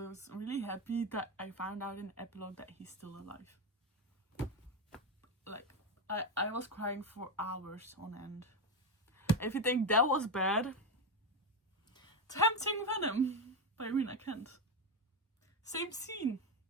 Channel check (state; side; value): normal; both; correlation 0.10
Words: I was really happy that I found out in the epilogue that he's still alive. Like, I was crying for hours on end. If you think that was bad, Tempting Venom by Rina Kent. Same scene.